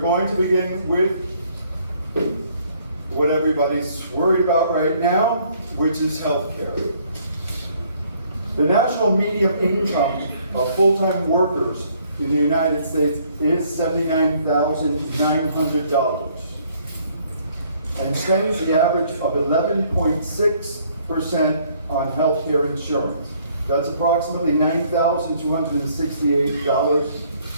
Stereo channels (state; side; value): inverted; both; correlation -0.63